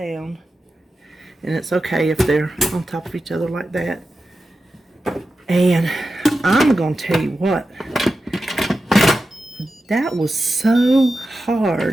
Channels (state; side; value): normal; both; correlation 0.91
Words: and it's okay if they're on top of each other like that. And I'm gonna tell you what, that was so